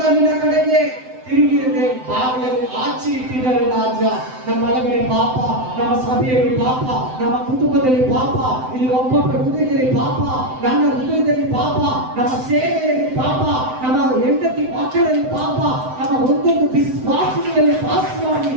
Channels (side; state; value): left; late; 7.8 ms